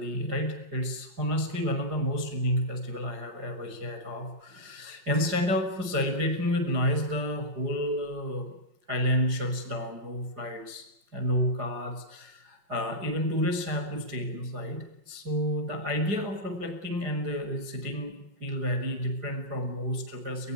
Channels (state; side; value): late; left; 5.5 ms